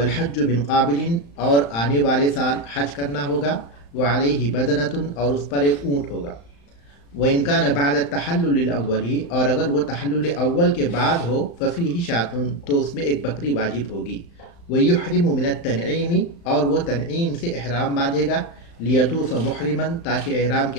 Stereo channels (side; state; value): right; late; 35 ms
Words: من قابل، اور آنے والے سال حج کرنا ہوگا. وعلیہ بدنۃ، اور اس پر ایک اونٹ ہوگا. وإن كان بعد التحلل الأول، اور اگر وہ تحلل اول کے بعد ہو، ففیہ شاۃ، تو اس میں ایک بکری واجب ہوگی. ویحرم من التنعیم، اور وہ تنعیم سے احرام باندھے گا. لیطوف محرما، تاکہ احرام